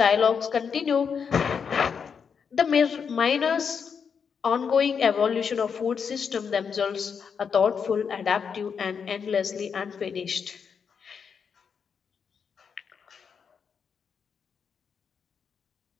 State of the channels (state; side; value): quieter; right; 6.5 dB